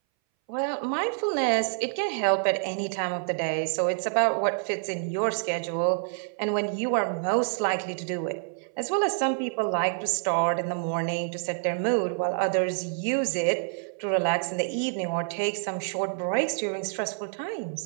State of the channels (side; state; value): left; silent; 60 dB below the other